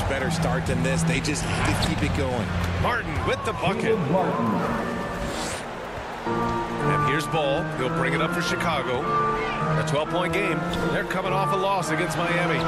better start than this. They just have to keep it going. Martin with the bucket. And here's Ball. He'll bring it up for Chicago. A 12-point game. They're coming off a loss against Miami.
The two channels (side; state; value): both; identical; correlation 1.00